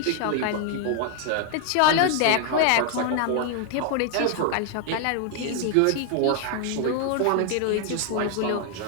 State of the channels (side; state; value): both; different; correlation 0.00